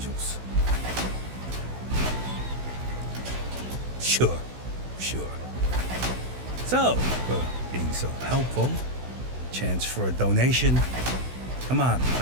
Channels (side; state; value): left; late; 16 ms